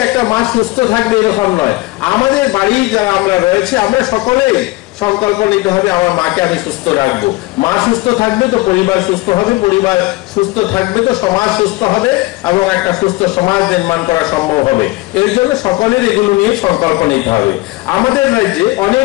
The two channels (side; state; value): right; quieter; 20.7 dB